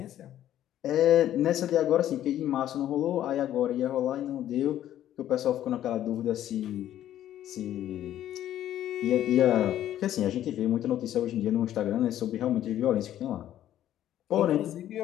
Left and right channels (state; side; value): quieter; right; 12.0 dB